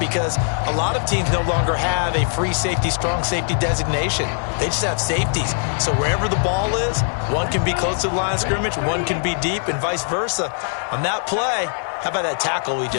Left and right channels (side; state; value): right; silent; 57 dB below the other